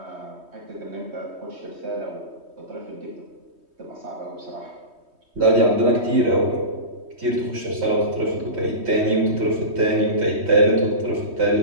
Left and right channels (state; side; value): late; left; 3.2 ms